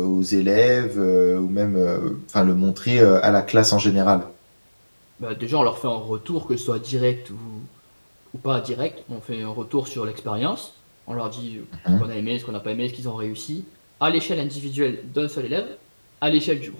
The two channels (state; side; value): inverted; both; correlation -1.00